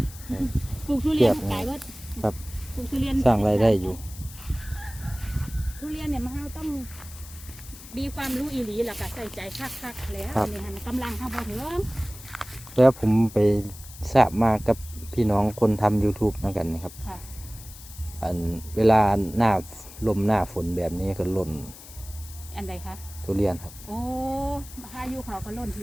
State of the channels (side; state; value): left; noise; hiss, 17 dB below the sound